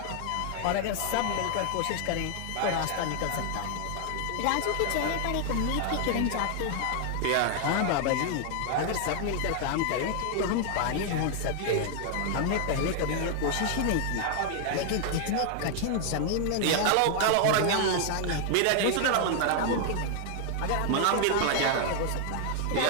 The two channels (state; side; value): different; both; correlation 0.00